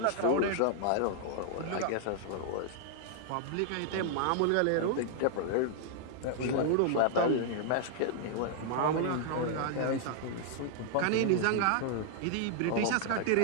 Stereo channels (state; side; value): different; both; correlation -0.01